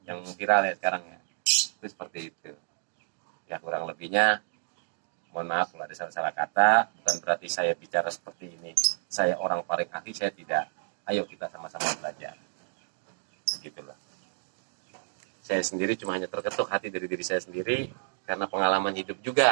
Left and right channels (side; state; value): left; silent; digital silence